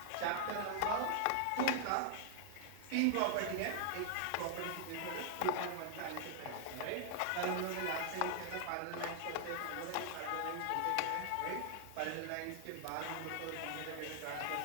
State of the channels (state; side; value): different; both; correlation 0.00